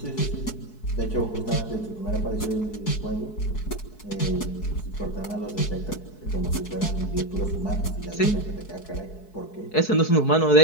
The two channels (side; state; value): right; late; 4.7 ms